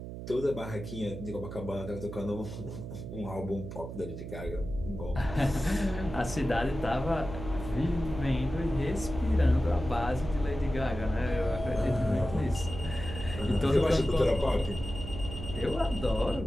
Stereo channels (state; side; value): noise; right; hum, 9 dB below the sound